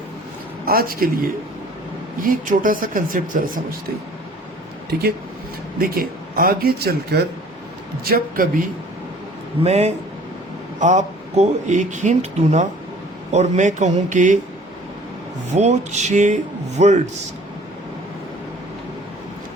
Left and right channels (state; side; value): normal; both; correlation 0.51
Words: आज के लिए ये एक छोटा सा कंसेप्ट जरा समझते हैं, ठीक है। देखिए, आगे चलकर जब कभी मैं आपको एक हिंट दूं ना और मैं कहूं कि वो 6 वर्ड्स,